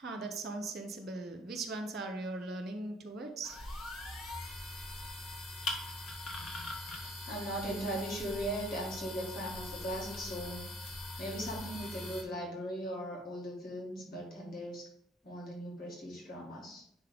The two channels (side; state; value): both; normal; correlation 0.59